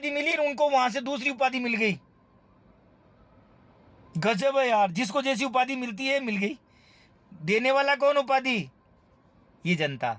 मिली, और उनको वहां से दूसरी उपाधि मिल गई। गजब है यार, जिसको जैसी उपाधि मिलती है मिल गई। देने वाला कौन उपाधि? ये जनता।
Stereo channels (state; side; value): identical; both; correlation 1.00